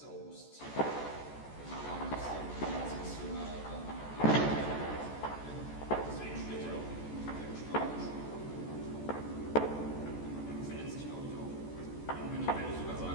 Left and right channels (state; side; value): late; right; 14 ms